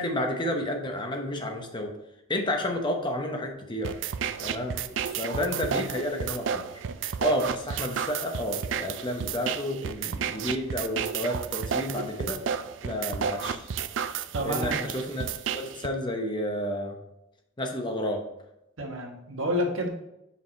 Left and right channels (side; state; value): both; normal; correlation 0.18